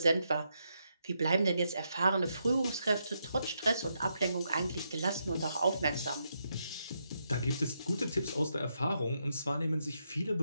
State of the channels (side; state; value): both; inverted; correlation -0.81